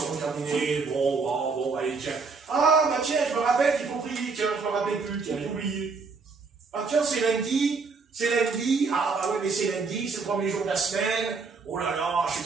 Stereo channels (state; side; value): quieter; left; 4.6 dB